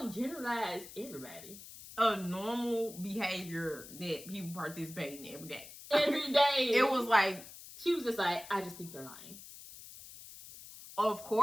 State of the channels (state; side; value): noise; left; hiss, 15 dB below the sound